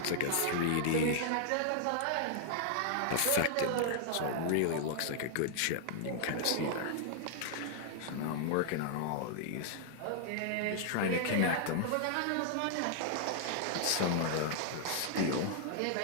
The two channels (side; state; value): both; different; correlation -0.01